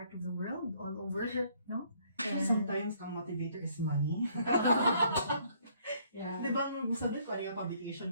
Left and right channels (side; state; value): both; inverted; correlation -0.64